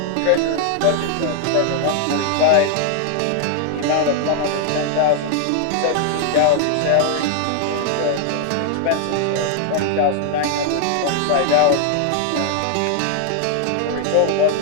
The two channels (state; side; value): different; both; correlation 0.00